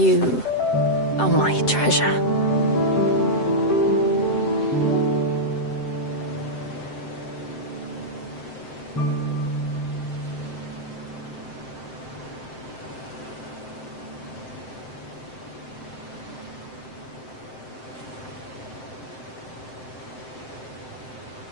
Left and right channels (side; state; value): right; late; 7.7 ms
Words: are my treasure.